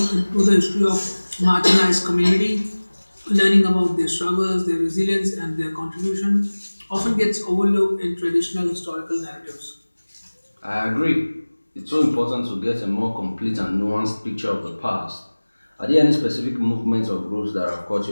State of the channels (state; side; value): inverted; both; correlation -1.00